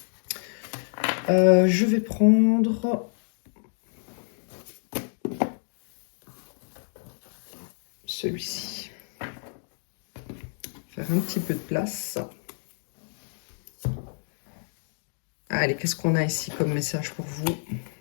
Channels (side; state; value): right; silent; digital silence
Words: Je vais prendre celui-ci. Faire un petit peu de place. Allez, qu'est-ce qu'on a ici comme message pour vous?